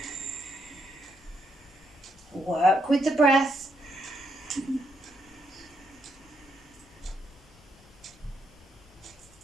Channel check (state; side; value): normal; both; correlation 0.77